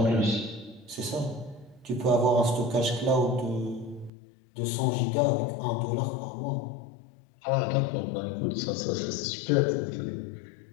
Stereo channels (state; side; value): drops out; right; at 4.1 s